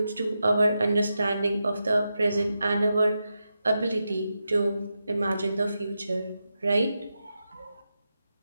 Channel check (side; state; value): both; inverted; correlation -0.88